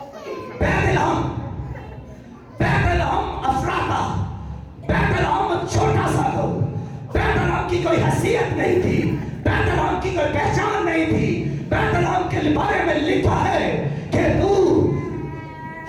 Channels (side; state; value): both; identical; correlation 1.00